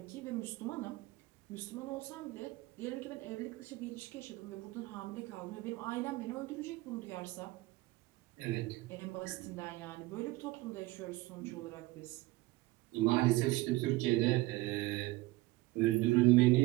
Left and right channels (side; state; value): left; quieter; 20.1 dB